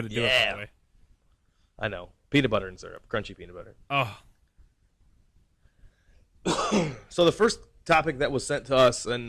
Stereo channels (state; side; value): identical; both; correlation 1.00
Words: do it, by the way. I know. Peanut butter and syrup. Crunchy peanut butter. Oh. So the first topic that was sent to us in